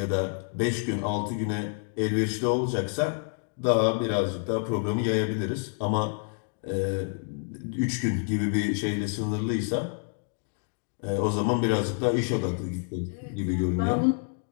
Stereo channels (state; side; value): silent; right; 59 dB below the other